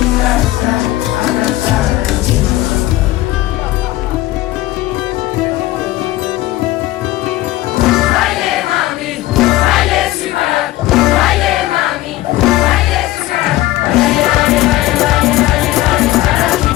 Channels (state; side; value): quieter; right; 16.4 dB